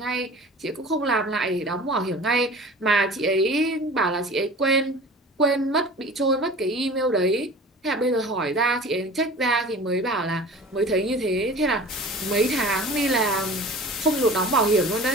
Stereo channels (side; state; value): both; normal; correlation 0.40